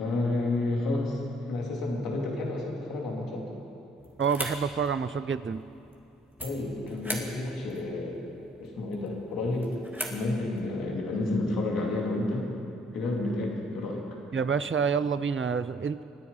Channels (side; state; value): both; normal; correlation 0.63